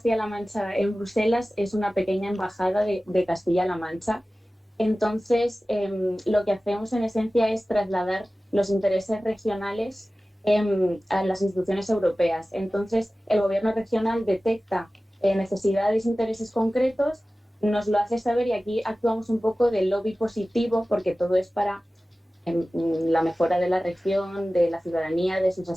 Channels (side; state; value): both; normal; correlation 0.96